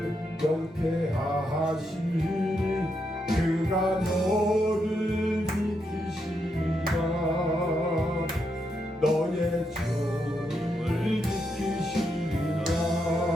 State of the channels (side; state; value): both; normal; correlation 0.81